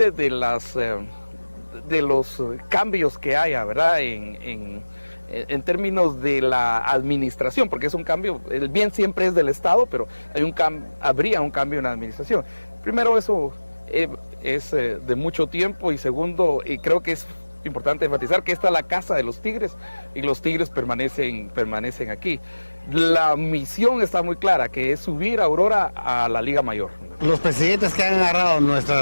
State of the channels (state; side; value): inverted; both; correlation -1.00